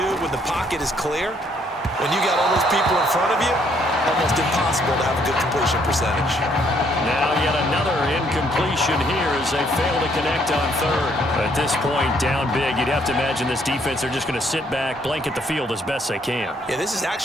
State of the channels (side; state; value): both; normal; correlation 0.68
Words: when the pocket is clear. When you got all those people in front of you, almost impossible to have a good completion percentage. Now yet another incompletion here as they fail to connect on third. At this point, down big, you'd have to imagine this defense, they're just going to sit back, blanket the field as best they can. Yeah, this is